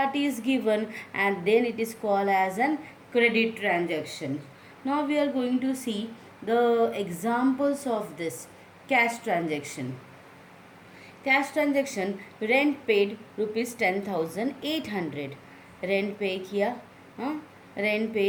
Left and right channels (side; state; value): both; identical; correlation 1.00